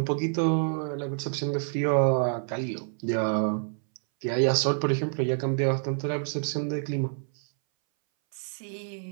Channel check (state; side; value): silent; left; 60 dB below the other